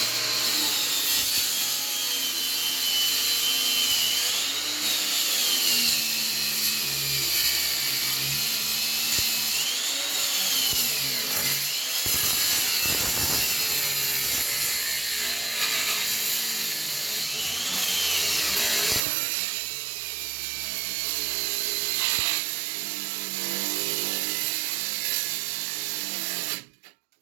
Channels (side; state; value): left; drops out; at 19.1 s